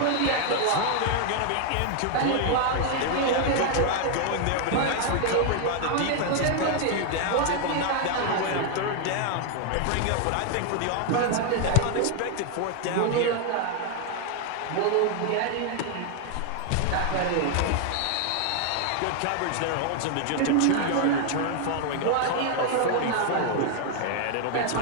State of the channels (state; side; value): different; both; correlation 0.00